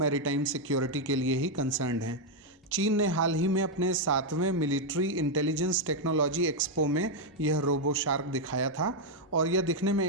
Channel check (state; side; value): normal; both; correlation 0.00